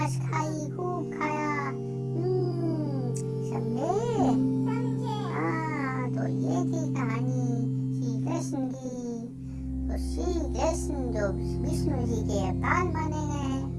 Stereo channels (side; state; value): both; identical; correlation 1.00